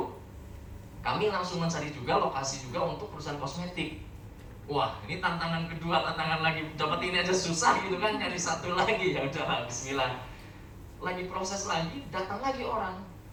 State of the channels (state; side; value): identical; both; correlation 1.00